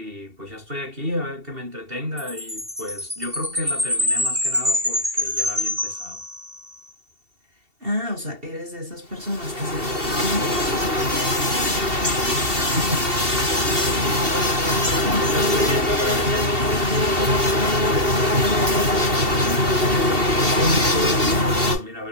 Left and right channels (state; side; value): late; left; 2.7 ms